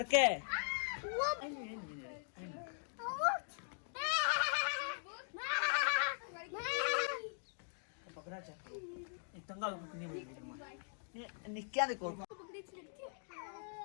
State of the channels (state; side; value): silent; right; digital silence